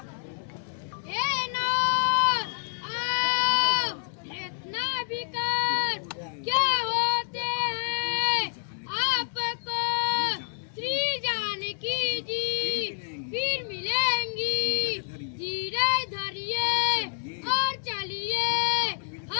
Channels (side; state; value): right; silent; 59 dB below the other